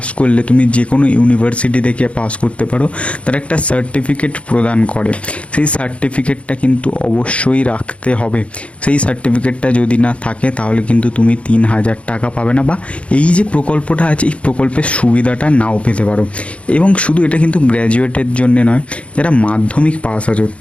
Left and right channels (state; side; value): late; right; 0.062 ms